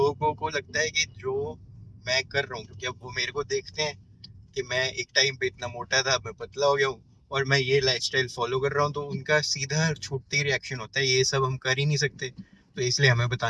को लगता है कि जो मैं कर रहा हूँ, क्योंकि अब वो मेरे को देखते हैं कि मैं एक टाइम पे इतना मोटा था, अब मैं पतला हो गया हूँ और मैं ये लाइफस्टाइल फॉलो कर रहा हूँ, तो उनका सीधा छूटते ही रिएक्शन होता है ये सब हम कर ही नहीं सकते, तो इसलिए हमें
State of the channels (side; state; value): both; identical; correlation 1.00